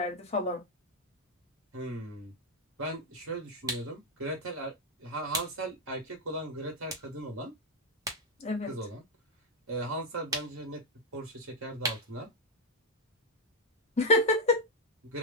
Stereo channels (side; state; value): both; normal; correlation 0.01